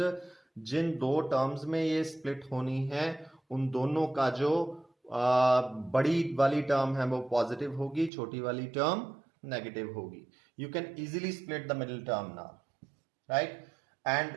जिन दो terms में ये split होनी है, उन दोनों का जो बड़ी वाली टर्म है वो पॉजिटिव होगी, छोटी वाली टर्म नेगेटिव होगी. You can easily split the middle term now, right?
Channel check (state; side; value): drops out; left; at 8.1 s